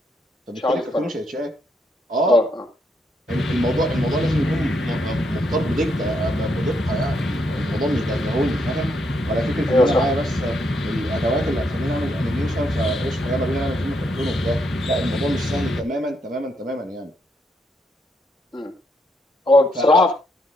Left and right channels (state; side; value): normal; both; correlation 0.77